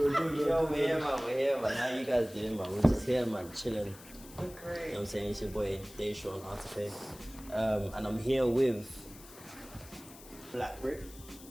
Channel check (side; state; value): left; noise; hiss, 19 dB below the sound